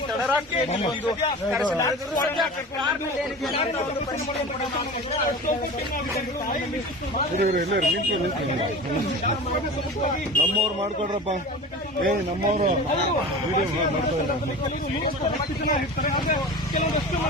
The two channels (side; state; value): both; normal; correlation 0.34